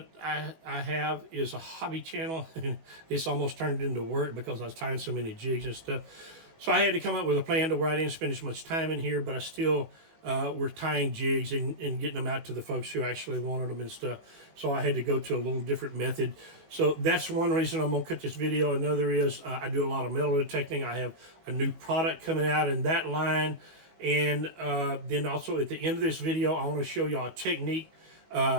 I have is a hobby channel. It's almost turned into work because I was tying so many jigs and stuff. So I had to come up with a plan to where I didn't spend as much time in here, but I still were tying jigs and getting them out to the folks who actually wanted them and stuff. So I had to go to a little different method. So that's one reason I'm going to cut this video. Another is I do a lot of metal detecting. I have a new product coming out in that line. And then also at the end of this video, I want to show y'all a technique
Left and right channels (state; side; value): late; left; 18 ms